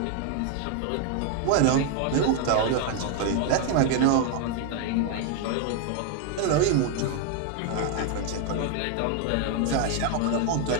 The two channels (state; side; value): different; both; correlation 0.00